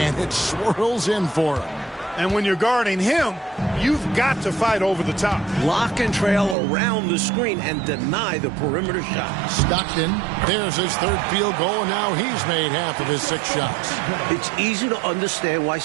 it swirls in for him. And when you're guarding him, you've got to fight over the top. Lock and trail around the screen and deny the perimeter shot. Stockton, there's his third field goal, and now he's made half of his 6 shots. It's easy to understand why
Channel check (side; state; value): left; drops out; at 6.6 s